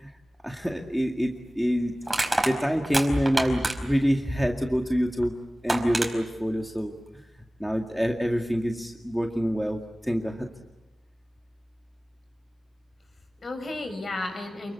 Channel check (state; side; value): normal; both; correlation 0.97